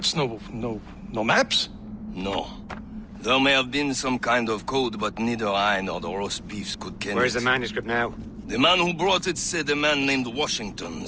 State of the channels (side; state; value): both; identical; correlation 1.00